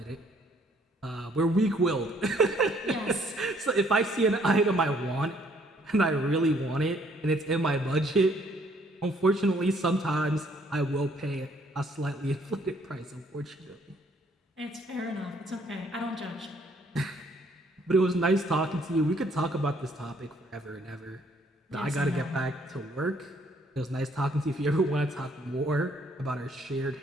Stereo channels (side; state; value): both; normal; correlation 0.64